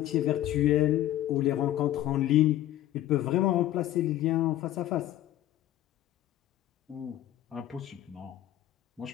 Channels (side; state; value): right; quieter; 13.5 dB